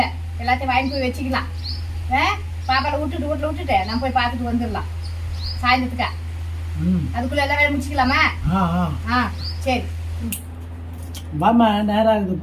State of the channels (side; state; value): both; identical; correlation 1.00